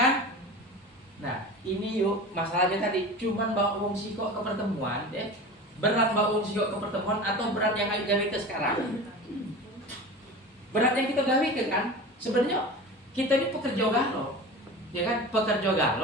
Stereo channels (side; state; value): both; normal; correlation 0.33